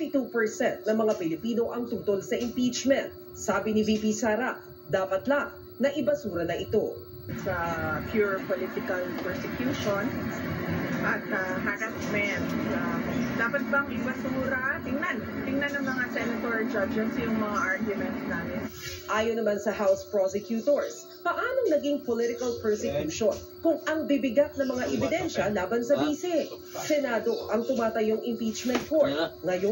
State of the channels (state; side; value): identical; both; correlation 1.00